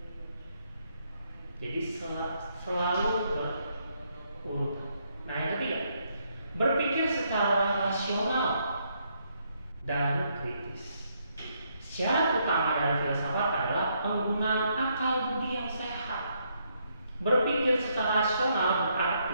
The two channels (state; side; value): inverted; both; correlation -0.75